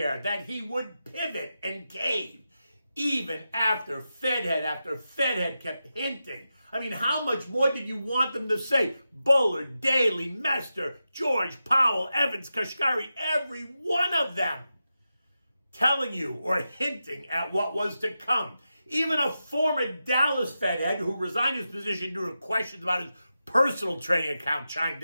that he would pivot and cave, even after Fed head kept hinting. I mean, how much more did you want them to say? Bullard, Daly, Mester, George, Powell, Evans, Kashkari, every one of them telling you or hinting at what was to come. Even a former Dallas Fed head who resigned his position due to questions about his personal trading account chimed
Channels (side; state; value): both; inverted; correlation -0.90